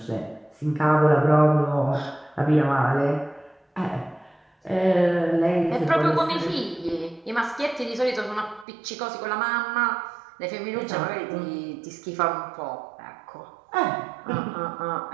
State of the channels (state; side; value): drops out; left; at 8.7 s